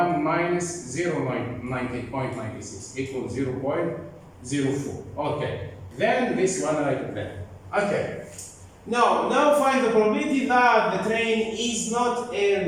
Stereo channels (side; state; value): both; identical; correlation 1.00